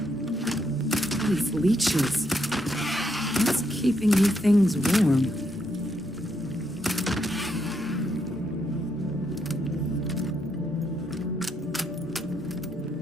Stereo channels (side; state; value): both; normal; correlation 0.78